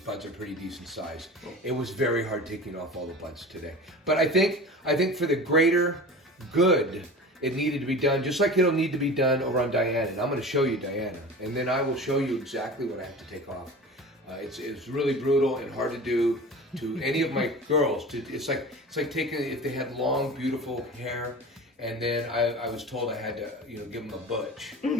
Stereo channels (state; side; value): normal; both; correlation 0.35